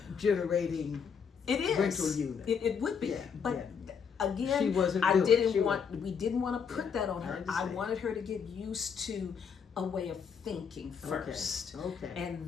generating rental unit. It would be, but again, she wasn't we didn't want to put that on her. I wanted her to get used to a way of thinking first. Okay.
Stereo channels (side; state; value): right; quieter; 6.6 dB